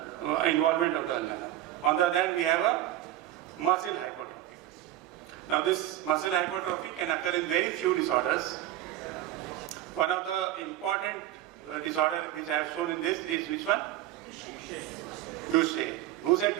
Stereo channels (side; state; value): left; quieter; 13.5 dB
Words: involvement of the ulna. On the other hand, we have a muscle hypertrophy. Now this muscle hypertrophy can occur in very few disorders. One of the important disorder which I have shown in this is which one? Duchenne. Who said